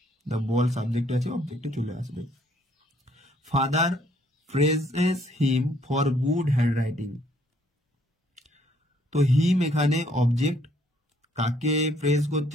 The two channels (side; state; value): both; normal; correlation 0.65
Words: the ball subject আছে, অবজেক্টে চলে আসবে। Father praises him for good hand writing, তো হিম এখানে অবজেক্ট, কাকে প্রেজ